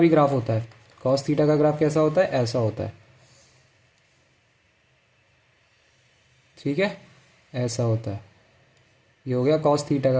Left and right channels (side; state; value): both; identical; correlation 1.00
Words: ग्राफ होता है। कॉस थीटा का ग्राफ कैसा होता है? ऐसा होता है, ठीक है? ऐसा होता है। ये हो गया कॉस थीटा